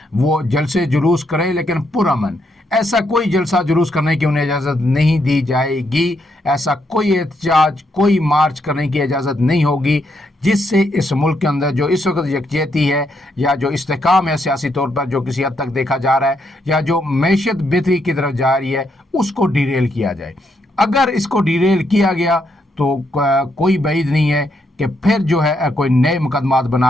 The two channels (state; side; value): normal; both; correlation 0.77